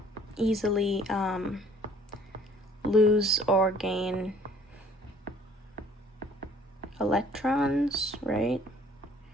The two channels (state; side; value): normal; both; correlation 0.56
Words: easily lose or gain electrons, right?